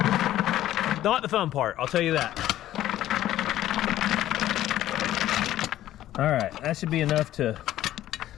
Not the fun part, I'll tell you that. All right, that should be enough to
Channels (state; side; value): quieter; right; 13.4 dB